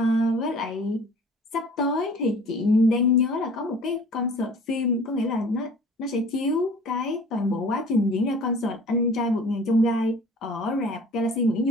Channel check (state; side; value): normal; both; correlation 0.47